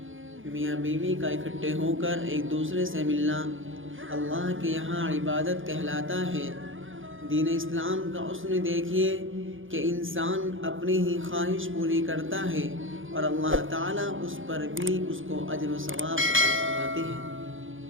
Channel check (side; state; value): left; late; 0.58 ms